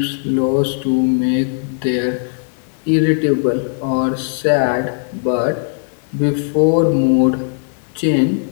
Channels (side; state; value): right; silent; digital silence